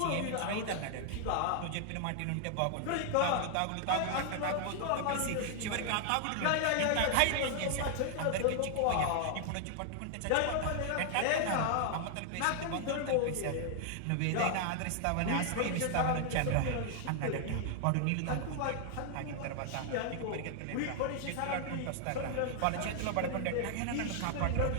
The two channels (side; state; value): both; different; correlation 0.00